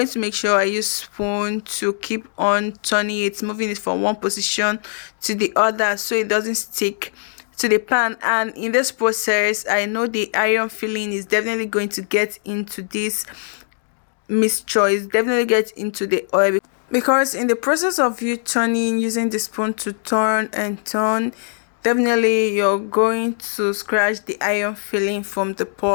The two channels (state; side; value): silent; right; 65 dB below the other